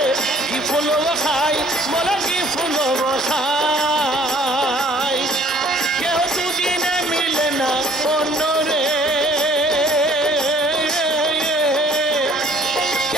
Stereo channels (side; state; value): both; normal; correlation 0.57